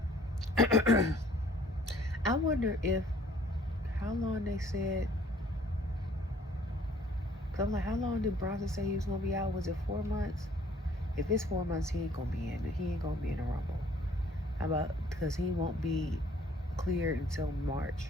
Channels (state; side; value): normal; both; correlation 0.58